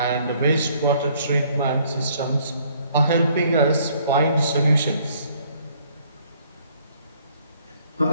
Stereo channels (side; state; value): both; inverted; correlation -0.63